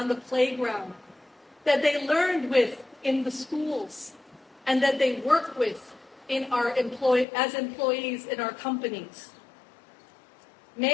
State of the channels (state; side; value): drops out; right; at 7.2 s